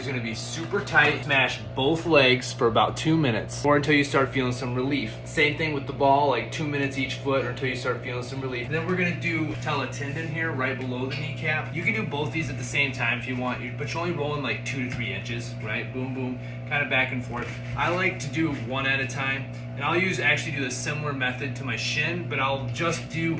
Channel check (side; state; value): both; identical; correlation 1.00